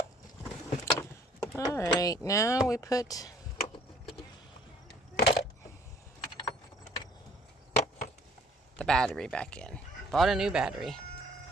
All right, now we put the battery back in. Bought a new battery.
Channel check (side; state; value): both; normal; correlation 0.58